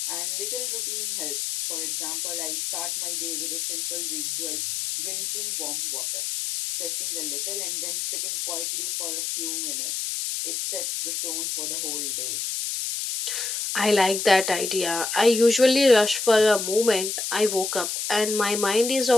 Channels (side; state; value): left; noise; hiss, 2 dB below the sound